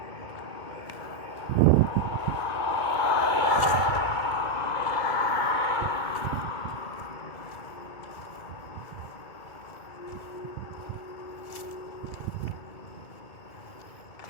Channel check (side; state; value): right; late; 2.2 ms